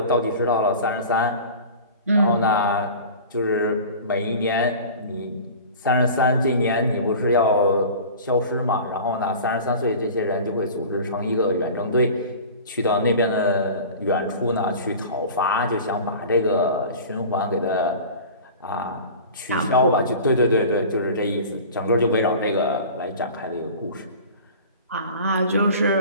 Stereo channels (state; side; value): inverted; both; correlation -0.38